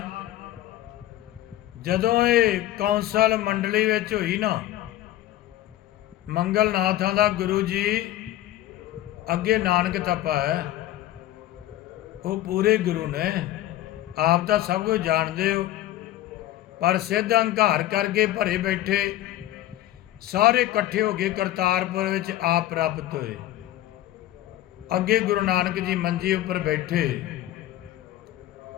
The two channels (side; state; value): right; quieter; 14.0 dB